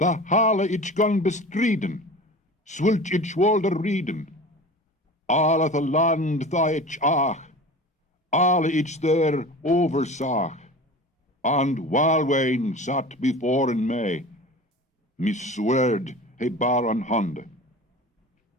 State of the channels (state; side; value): normal; both; correlation 0.36